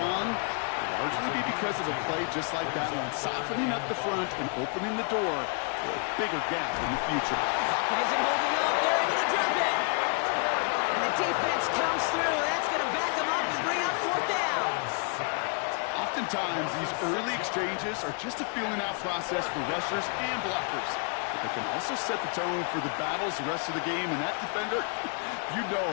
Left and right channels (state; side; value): quieter; right; 39.7 dB